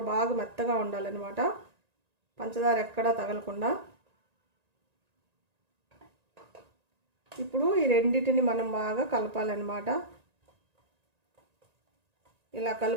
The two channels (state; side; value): late; left; 1.9 ms